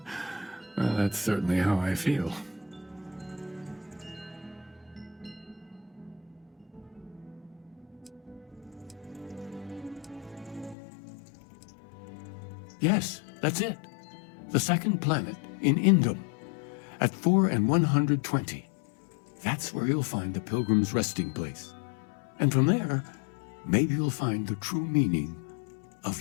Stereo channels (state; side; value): drops out; right; at 10.8 s